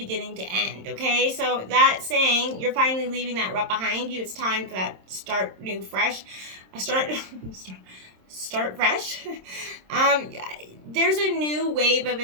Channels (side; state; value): left; late; 26 ms